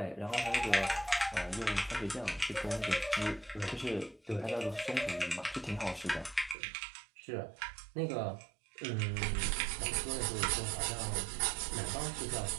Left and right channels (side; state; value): left; drops out; at 6.6 s